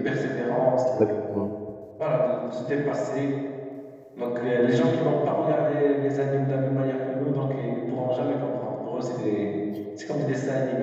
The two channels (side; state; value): both; identical; correlation 1.00